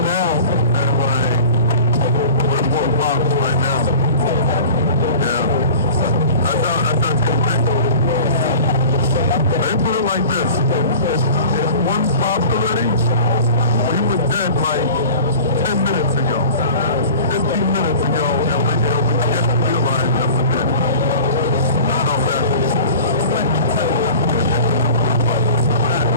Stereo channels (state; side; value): inverted; both; correlation -0.40